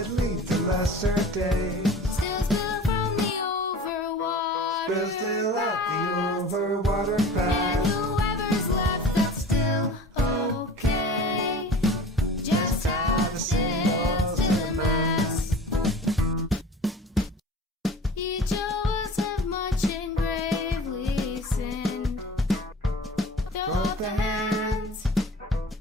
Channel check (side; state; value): both; normal; correlation 0.40